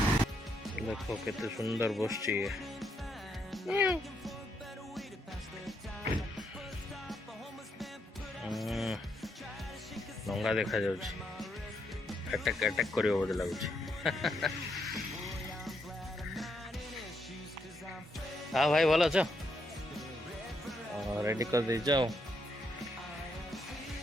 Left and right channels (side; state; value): both; normal; correlation 0.77